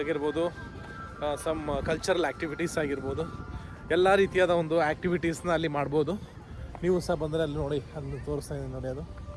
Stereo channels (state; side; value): identical; both; correlation 1.00